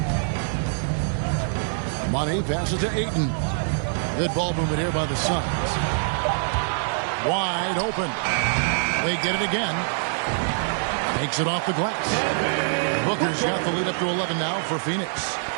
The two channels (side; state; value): left; silent; digital silence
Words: Money passes to Ayton. Good ball movement here by the Suns. Wide open. They get it again. Takes it off the glass. Booker's got the lead up to 11 now for Phoenix.